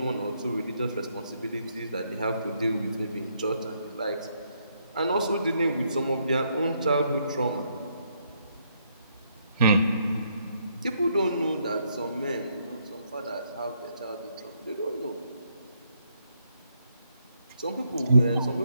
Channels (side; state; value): both; inverted; correlation -0.74